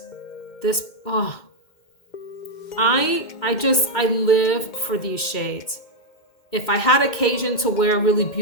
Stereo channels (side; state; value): right; late; 2.1 ms